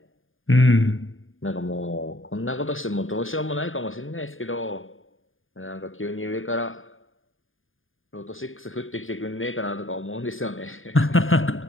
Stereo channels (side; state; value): right; late; 0.59 ms